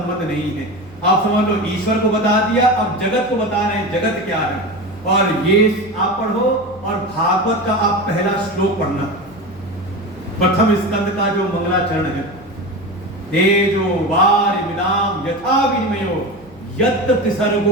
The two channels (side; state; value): left; noise; hum, 24 dB below the sound